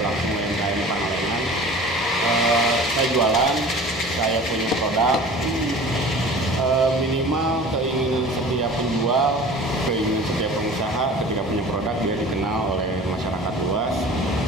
UMKM Pangalengan, saya jualan, saya punya produk, minimal keinginan setiap penjual, keinginan setiap pengusaha ketika punya produk dia dikenal oleh masyarakat luas,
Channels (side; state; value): both; normal; correlation 0.42